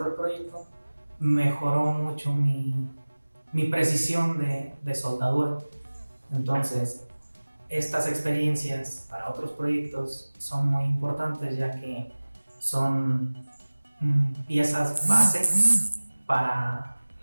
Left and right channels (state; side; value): inverted; both; correlation -1.00